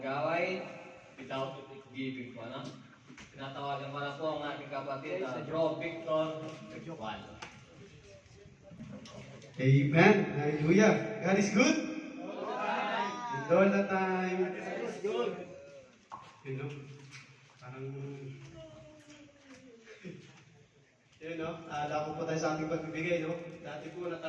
gaway without giving po, ano? Tinatawagan ko na po ang ating kapatid, Bro Victor Juan. Amen. Hallelujah. God is good. And all the time. God is good. You know, parang... Yun, no? Dako po tayo sa ating pagbibigay, no? Dati po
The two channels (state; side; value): identical; both; correlation 1.00